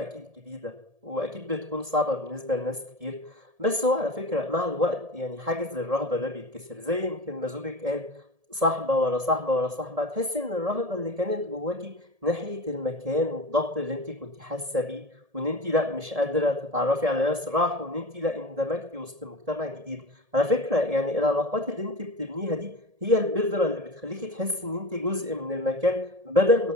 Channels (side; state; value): left; late; 1.7 ms